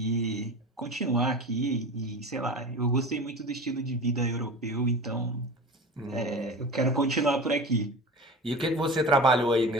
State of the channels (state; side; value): normal; both; correlation 0.33